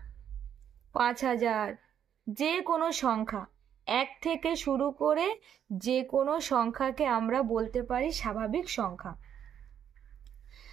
5000, যে কোনো সংখ্যা 1 থেকে শুরু করে যে কোনো সংখ্যাকে আমরা বলতে পারি স্বাভাবিক সংখ্যা।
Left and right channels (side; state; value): left; quieter; 9.1 dB